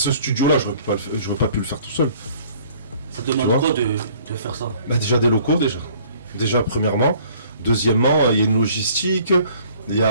studio-là, j'aurais pas pu le faire tout seul. Ça demande quoi de faire ça? Déjà des locaux, déjà premièrement. Deuxièmement, il y a une logistique, il y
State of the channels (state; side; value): inverted; both; correlation -0.55